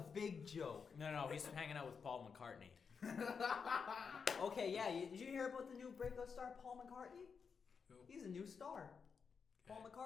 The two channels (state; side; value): quieter; right; 5.9 dB